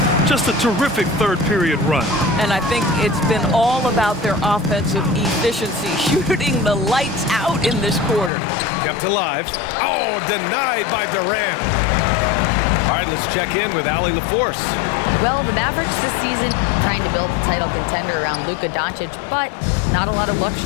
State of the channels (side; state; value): right; drops out; at 8.3 s